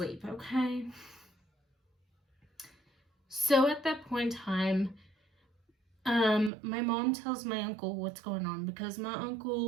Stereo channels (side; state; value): left; drops out; at 6.5 s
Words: okay? So at that point in time, my mom tells my uncle what's going on because my